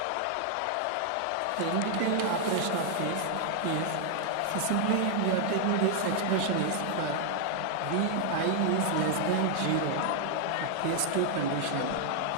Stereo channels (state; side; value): different; both; correlation 0.00